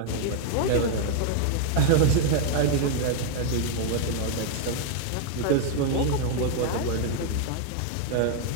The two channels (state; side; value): different; both; correlation 0.00